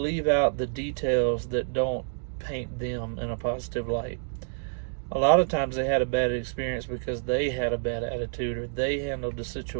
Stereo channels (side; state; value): left; silent; digital silence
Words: out the details that don't paint them in a positive light. A lot of times they had a bad experience because they had a bad attitude or they handled the